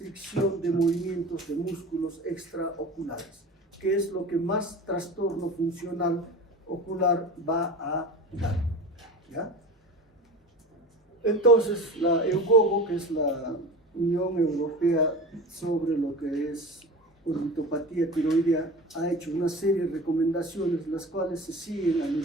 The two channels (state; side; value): normal; both; correlation 0.33